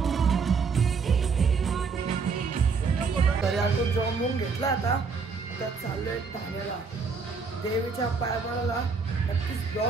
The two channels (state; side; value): quieter; left; 5.0 dB